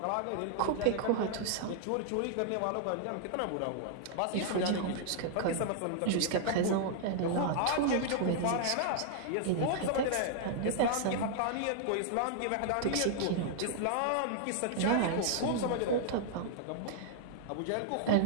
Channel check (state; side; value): different; both; correlation -0.01